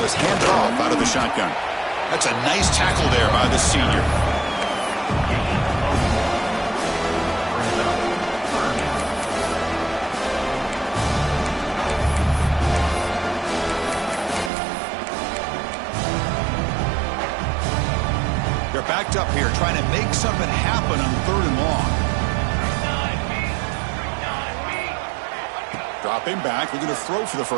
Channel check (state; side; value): drops out; left; at 14.5 s